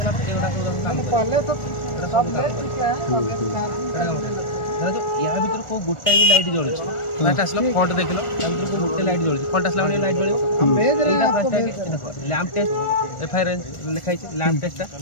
या भर को गोटे भी लाइट जलुच फास्ट आसला फ्रंट देख लो भर गोटे लाइट जलुच फ्रंट आसला लाइट जल लैंप टेस्ट एफआईआर लिखाई लैंप टेस्ट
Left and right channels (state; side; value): late; right; 1.4 ms